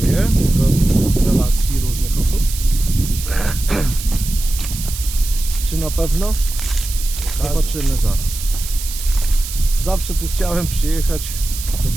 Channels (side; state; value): right; noise; hiss, 9 dB below the sound